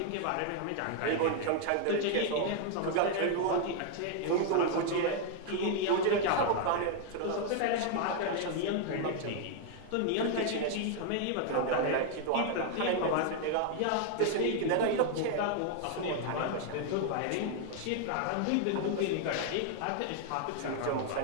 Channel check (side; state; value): both; different; correlation 0.00